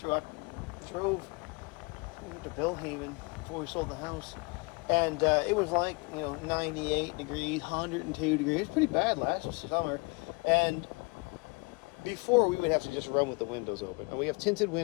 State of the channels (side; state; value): right; quieter; 30.4 dB